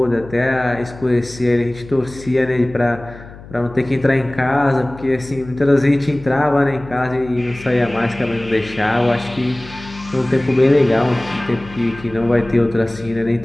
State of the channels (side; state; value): left; noise; hum, 17 dB below the sound